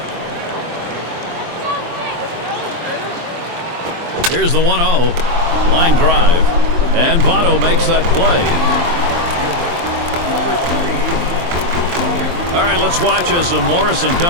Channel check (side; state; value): left; late; 23 ms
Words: Here's the 1-0. Line drive. And Votto makes that play. All right, let's watch as Morrison